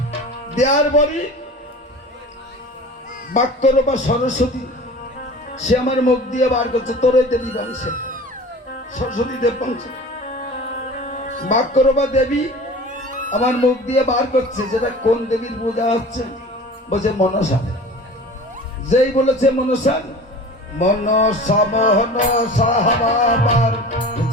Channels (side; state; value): both; normal; correlation 0.39